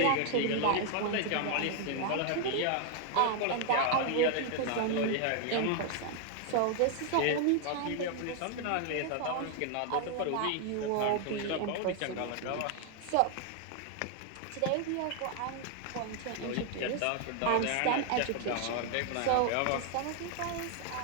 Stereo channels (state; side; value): different; both; correlation 0.00